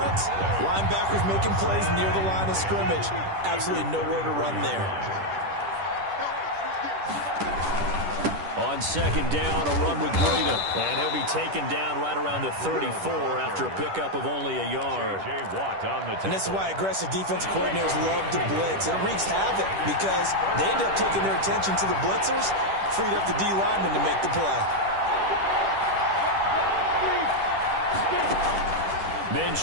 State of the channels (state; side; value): late; left; 10 ms